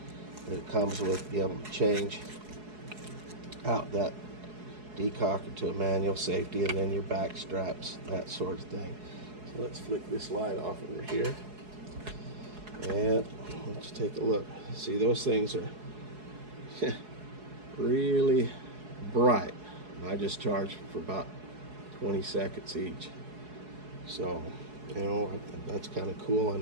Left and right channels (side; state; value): left; late; 4.7 ms